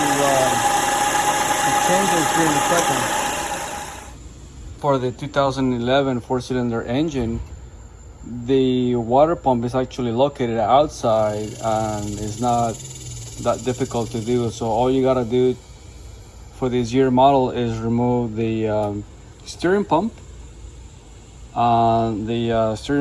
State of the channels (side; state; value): both; identical; correlation 1.00